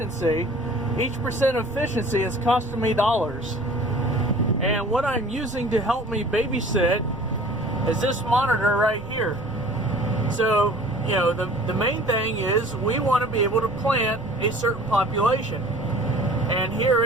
each percent efficiency is costing me dollars. And what I'm using to help me babysit is this monitor right here. So, the main thing is we want to be able to plant a certain population. And here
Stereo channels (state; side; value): noise; right; rumble, 20 dB below the sound